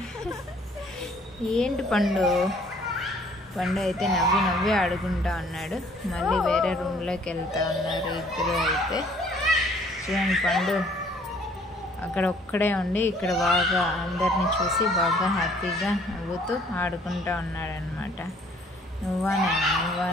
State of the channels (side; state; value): both; normal; correlation 0.59